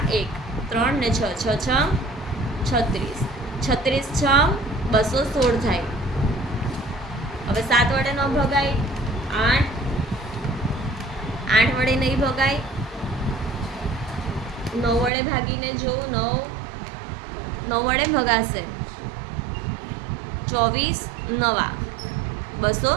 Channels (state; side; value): drops out; left; at 15.1 s